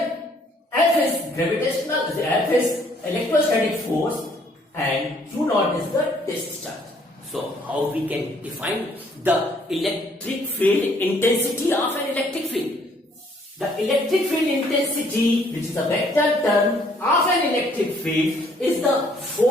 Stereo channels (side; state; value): both; normal; correlation 0.64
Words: F is gravitational, F is electrostatic force and Q naught is the test charge. So how we can define the electric field intensity of an electric field? The electric field intensity, which is a vector term of an electric field, is the